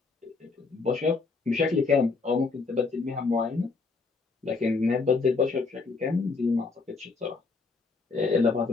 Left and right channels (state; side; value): quieter; right; 4.2 dB